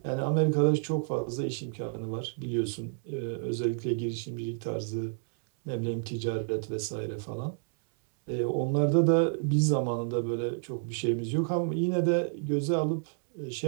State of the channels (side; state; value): left; silent; 58 dB below the other